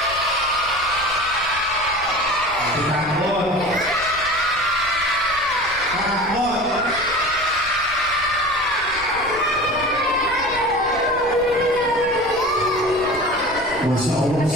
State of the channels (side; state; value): left; noise; rumble, 18 dB below the sound